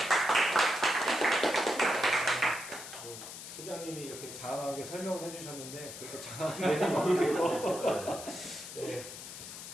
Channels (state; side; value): noise; left; hiss, 11 dB below the sound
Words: 부장님이 이렇게 장황하게 설명을 해주셨는데 그렇게 장황하게 모르겠고 네.